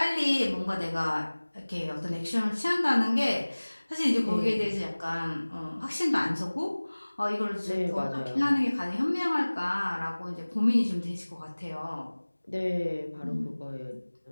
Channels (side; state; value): both; inverted; correlation -1.00